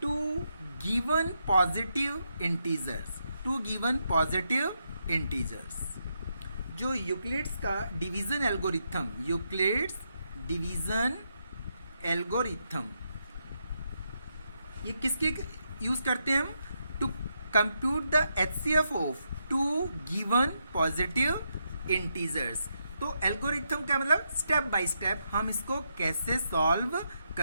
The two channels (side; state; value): both; inverted; correlation -0.81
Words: two given positive integers. Two given positive integers. जो यूक्लिड्स का division algorithm, Euclid's division algorithm, ये किसके यूज करते हैं हम? To compute the HCF of two given positive integers. तो एल्गोरिथम का मतलब स्टेप बाय स्टेप हम इसको कैसे सॉल्व